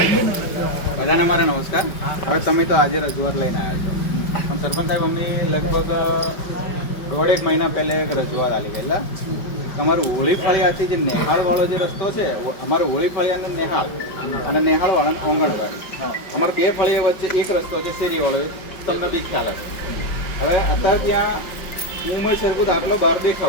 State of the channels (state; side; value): late; right; 5.3 ms